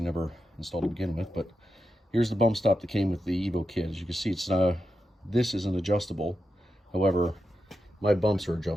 never installed to begin with, but here's the bump stop that came with the Evo kit. As you can see, this isn't adjustable. However, my bumps are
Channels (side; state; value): both; normal; correlation 0.88